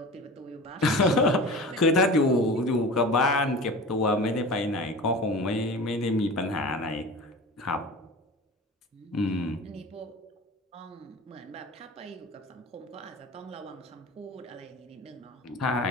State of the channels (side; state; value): both; normal; correlation 0.35